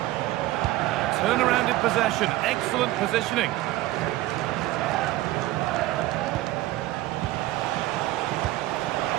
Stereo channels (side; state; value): left; quieter; 16.8 dB